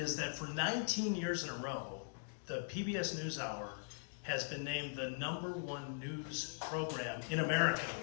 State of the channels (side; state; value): right; silent; digital silence